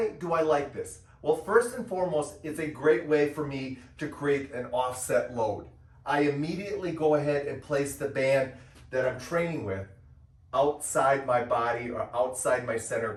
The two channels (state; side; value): identical; both; correlation 1.00